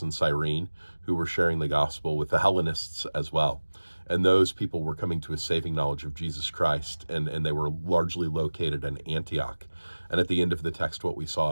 Cyrene who were sharing the gospel with the Hellenists as well. And those people were coming to a saving knowledge of Jesus Christ, and they were largely located in Antioch. And at the end of the text, what we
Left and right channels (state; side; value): inverted; both; correlation -1.00